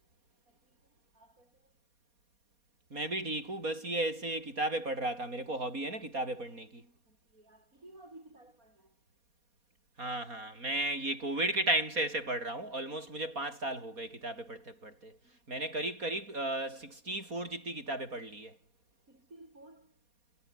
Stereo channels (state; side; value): late; left; 4.2 ms